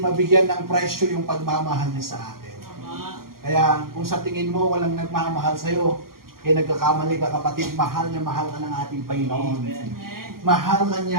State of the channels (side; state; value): left; late; 0.92 ms